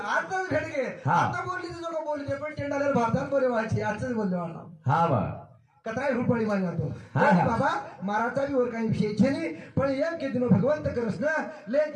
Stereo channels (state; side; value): identical; both; correlation 1.00